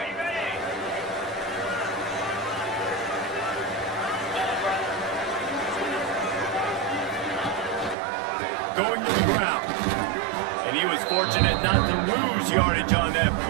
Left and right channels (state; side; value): drops out; left; at 8.0 s